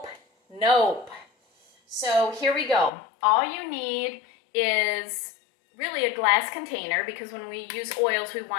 nope. So here we go. All you need is really a glass container, because when we use oils we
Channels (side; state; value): right; drops out; at 2.9 s